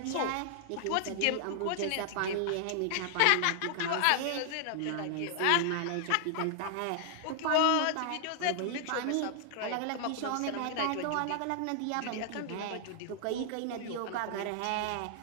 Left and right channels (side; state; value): both; different; correlation 0.00